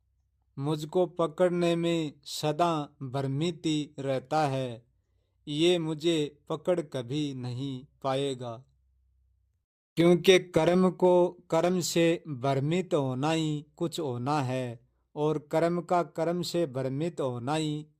मुझको पकड़ने में सदा भ्रमित ही रहता है, ये मुझे पकड़ कभी नहीं पाएगा, क्योंकि कर्म को कर्म से भ्रमित होना ही कुछ होना है और कर्म का कर्म से भ्रमित होना ही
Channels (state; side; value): identical; both; correlation 1.00